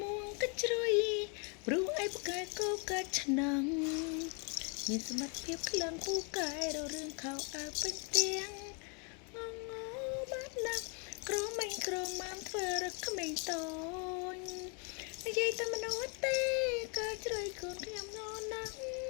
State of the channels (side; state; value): right; quieter; 35.8 dB